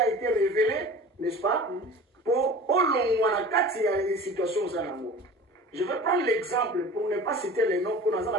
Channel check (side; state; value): both; normal; correlation 0.39